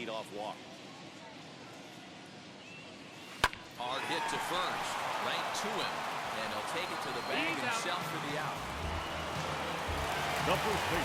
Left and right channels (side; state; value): both; identical; correlation 1.00